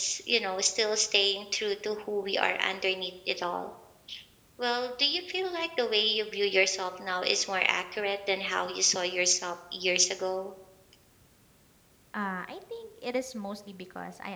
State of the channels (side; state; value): both; identical; correlation 1.00